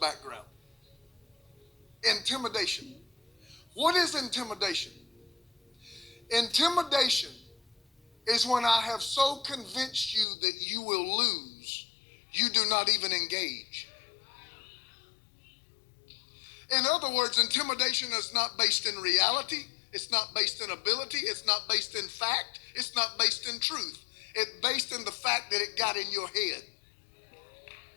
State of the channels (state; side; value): drops out; right; at 10.2 s